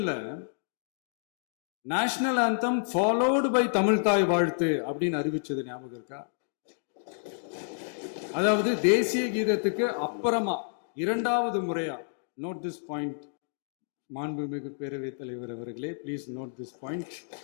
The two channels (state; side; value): silent; right; digital silence